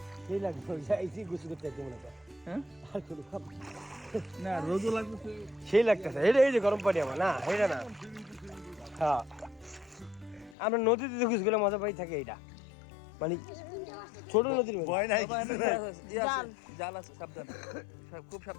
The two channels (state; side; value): drops out; right; at 10.6 s